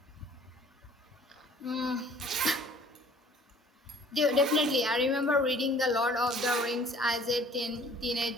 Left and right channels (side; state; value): both; normal; correlation 0.53